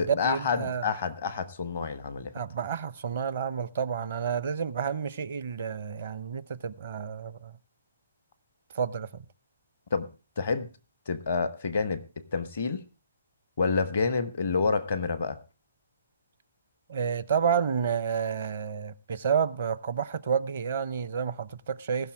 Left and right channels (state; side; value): inverted; both; correlation -0.59